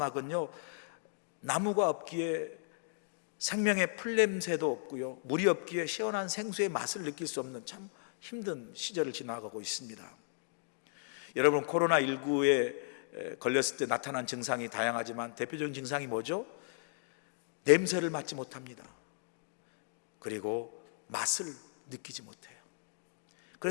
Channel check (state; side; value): silent; right; digital silence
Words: 나무가 없기에 생명의 풀냄새도 없고요, 물이 없기에 시원한 생수의 맛을 느낄 수 없는 참 힘든 시절을 지나가고 있습니다. 여러분, 코로나19에 걸렸을 때 나타난 증상이 다양하지만 대표적인 증상이 뭐죠? 냄새를 맡지 못합니다. 그리고 맛을 느끼지 못해요.